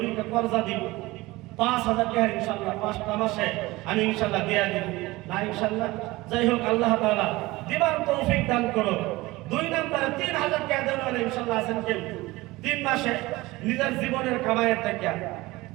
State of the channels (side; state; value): left; quieter; 20.3 dB